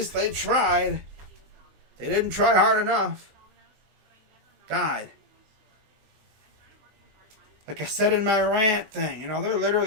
they tried. They didn't try hard enough. God. Like I said in my rant thing, they're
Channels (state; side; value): late; left; 20 ms